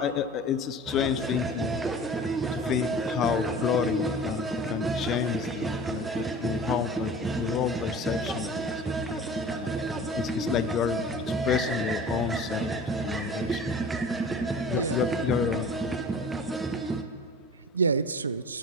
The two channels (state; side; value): normal; both; correlation 0.41